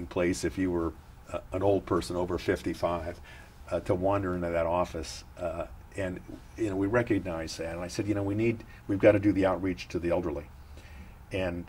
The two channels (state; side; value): identical; both; correlation 1.00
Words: place if you were an old person over 55 to wander into that office. And you know, we recognized that. And I said, you know, we've got to do the outreach to the elderly. And